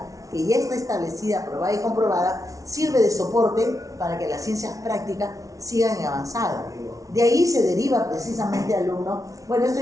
que ya está establecida, probada y comprobada, sirve de soporte para que las ciencias prácticas sigan en avanzada. De ahí se deriva precisamente, alumno, bueno, esto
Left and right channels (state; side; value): late; left; 0.17 ms